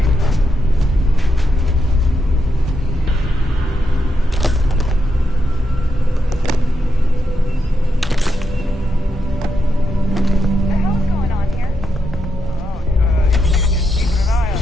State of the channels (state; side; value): normal; both; correlation 0.83